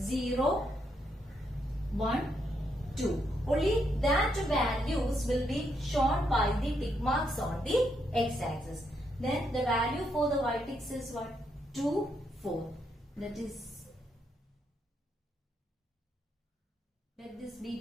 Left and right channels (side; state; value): both; normal; correlation 0.78